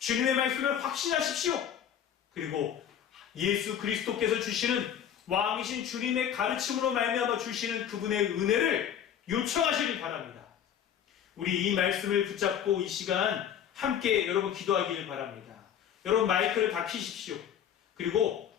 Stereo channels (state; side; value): quieter; right; 9.2 dB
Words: 말씀을 확신하십시오. 그리고 예수 그리스도께서 주시는 왕이신 주님의 가르침으로 말미암아 주시는 그분의 은혜를 요청하시길 바랍니다. 우리 이 말씀을 붙잡고 이 시간 함께 여러분 기도하기를 바랍니다. 여러분 마이크를 다 켜십시오. 그리고